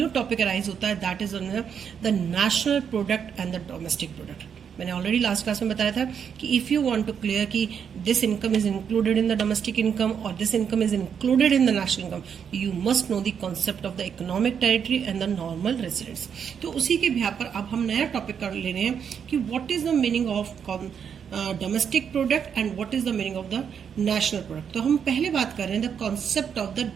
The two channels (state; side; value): quieter; left; 7.5 dB